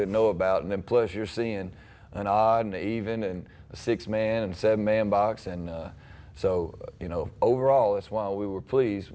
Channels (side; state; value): both; identical; correlation 1.00